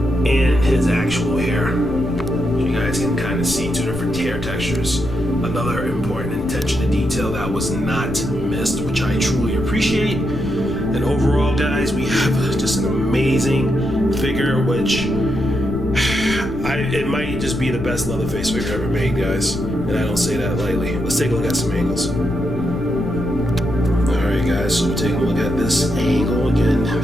his actual hair. You guys can kind of see two different hair textures. Another important attention to detail that was not missed, which I truly appreciate. And overall, guys, we have just an amazing figure, which it might just be the best Leatherface figure ever made, guys. And I don't say that lightly. Let's take a look at some angles. Alright, guys, so we're taking a look at this angle. Again,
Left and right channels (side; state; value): left; noise; rumble, 9 dB below the sound